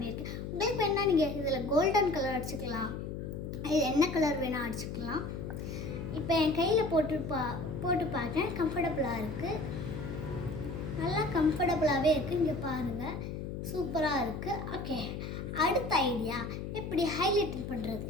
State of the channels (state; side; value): noise; left; hum, 6 dB below the sound